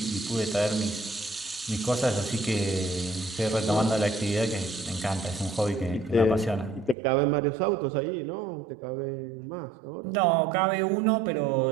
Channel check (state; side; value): drops out; left; at 7.0 s